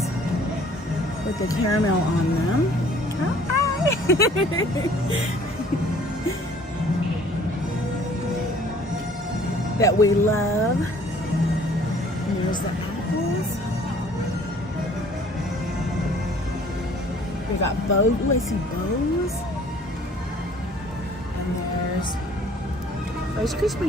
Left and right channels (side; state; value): both; normal; correlation 0.55